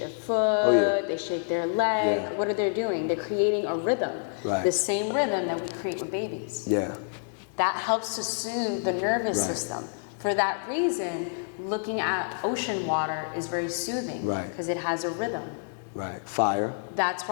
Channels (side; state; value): right; silent; digital silence